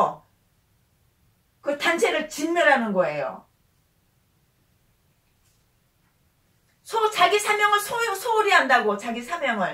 그 단체를 진멸하는 거예요. 자기 사명을 소홀히 한다고 자기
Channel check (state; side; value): identical; both; correlation 1.00